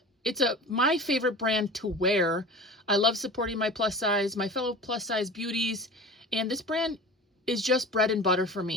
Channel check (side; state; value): both; normal; correlation 0.36